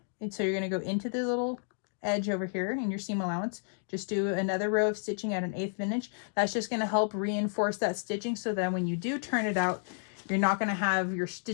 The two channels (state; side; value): silent; right; digital silence